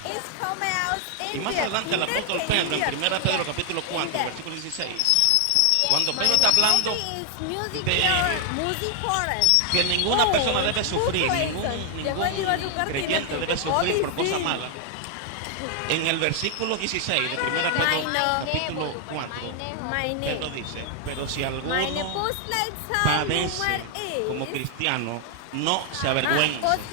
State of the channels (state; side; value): different; both; correlation 0.00